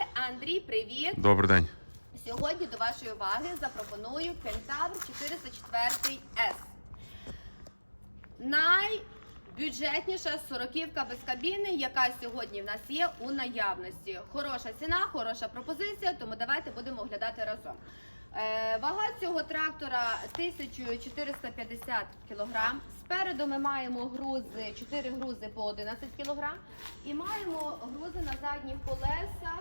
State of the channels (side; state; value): both; inverted; correlation -1.00